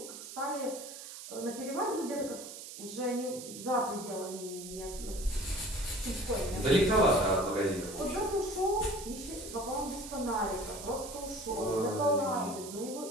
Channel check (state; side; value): noise; right; hiss, 11 dB below the sound